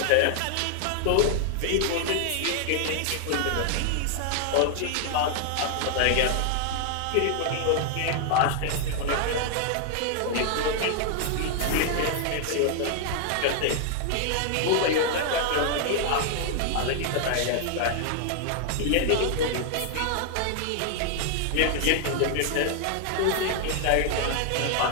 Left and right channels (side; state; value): both; different; correlation 0.00